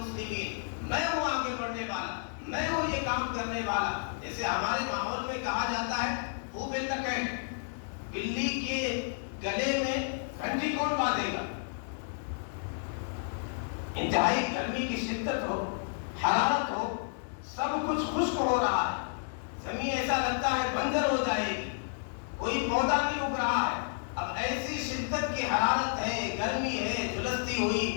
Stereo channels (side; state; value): right; silent; digital silence